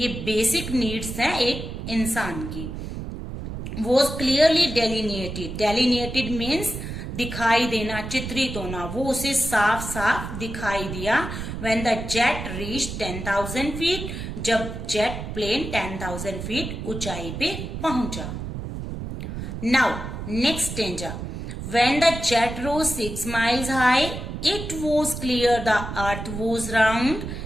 बेसिक नीड्स हैं एक इंसान की। Was clearly delineated, delineated means दिखाई देना, चित्रित होना, वो उसे साफ साफ दिखाई दिया। When the jet reach 10,000 feet, जब जेट प्लेन 10,000 फीट ऊंचाई पे पहुंचा। Now next stanza, when the jet rose 6 miles high, it was clear the earth was round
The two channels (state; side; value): noise; right; rumble, 7 dB below the sound